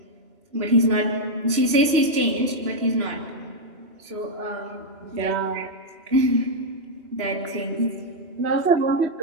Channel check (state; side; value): late; left; 3.0 ms